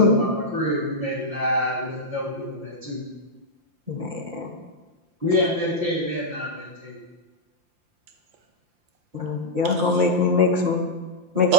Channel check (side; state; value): left; late; 5.8 ms